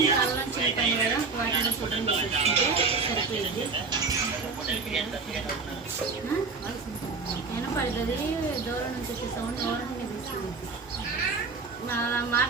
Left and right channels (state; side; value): quieter; left; 4.5 dB